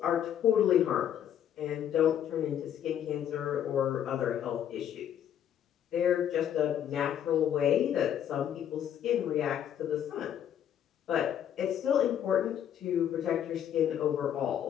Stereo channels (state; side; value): quieter; right; 9.9 dB